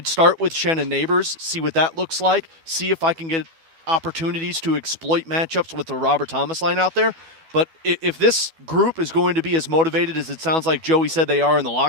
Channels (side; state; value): left; late; 12 ms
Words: start with Shen and Neighbors, see what that looks like, see if I can get opportunities to exploit matchups with the Robert Thomas line out there. But if this group is going to be as motivated as it sounds like Joey said they are in the